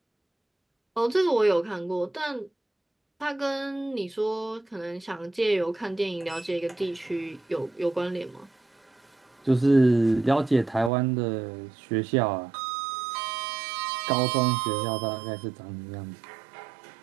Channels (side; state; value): left; drops out; at 10.9 s